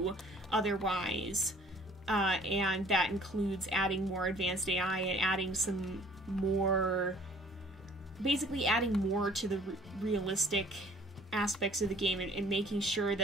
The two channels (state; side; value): normal; both; correlation 0.54